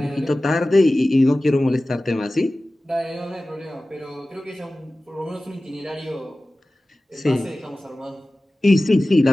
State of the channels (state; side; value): normal; both; correlation 0.96